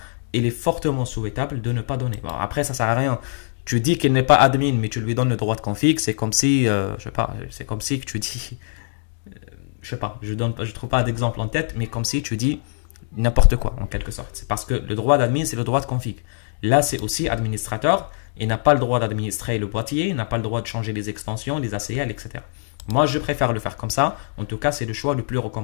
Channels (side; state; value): right; silent; digital silence